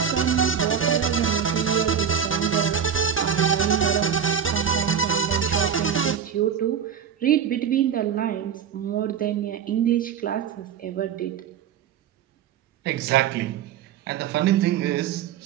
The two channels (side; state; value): left; quieter; 7.9 dB